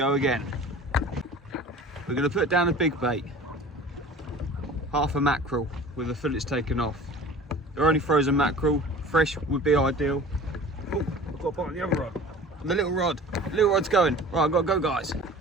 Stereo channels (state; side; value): normal; both; correlation 0.42